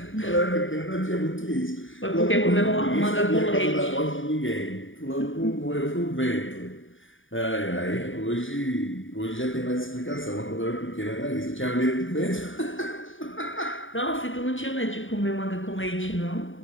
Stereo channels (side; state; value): right; late; 0.57 ms